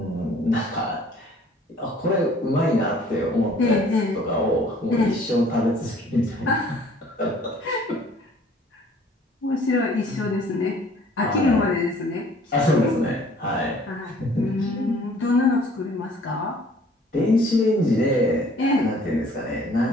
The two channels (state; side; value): normal; both; correlation 0.55